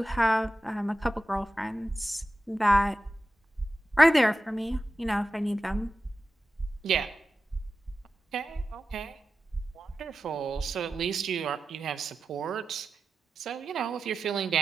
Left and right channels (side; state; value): both; normal; correlation 0.93